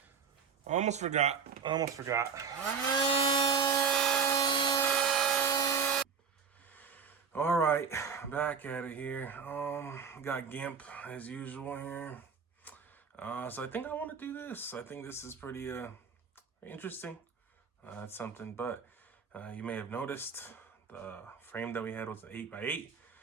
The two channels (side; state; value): left; quieter; 5.9 dB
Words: I almost forgot. All right, back at it here. Got GIMP as usual here. So I think I want to do this. I think this is pretty interesting. That's something, but you may have noticed the frame that we had was an 8x8,